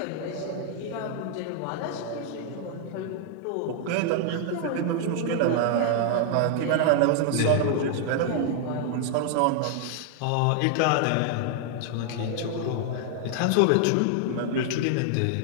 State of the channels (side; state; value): both; different; correlation 0.00